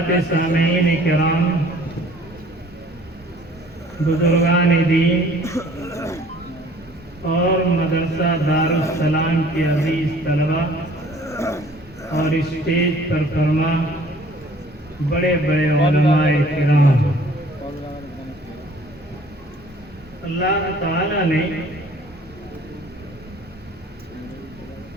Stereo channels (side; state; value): both; normal; correlation 0.53